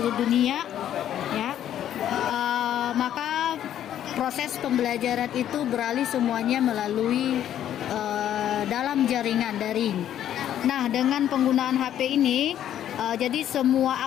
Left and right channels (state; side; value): quieter; right; 10.9 dB